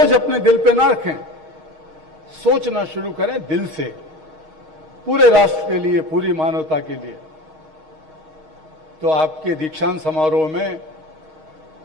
अपने दिल पे ना रखें, सोचना शुरू करें दिल से, पूरे राष्ट्र के लिए, पूरी मानवता के लिए। तो आपके दीक्षांत समारोह में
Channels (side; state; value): left; late; 6.4 ms